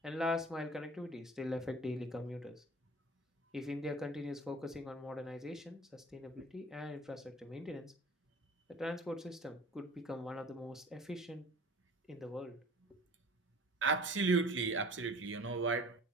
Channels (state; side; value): normal; both; correlation 0.45